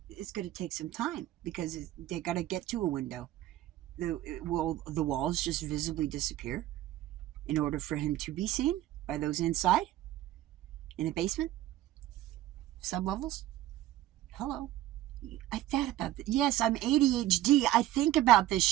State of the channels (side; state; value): left; quieter; 14.3 dB